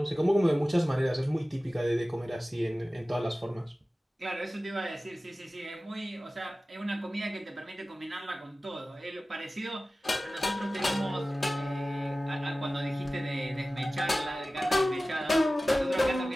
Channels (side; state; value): both; normal; correlation 0.96